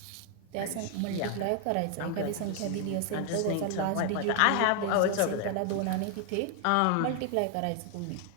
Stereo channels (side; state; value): both; different; correlation 0.00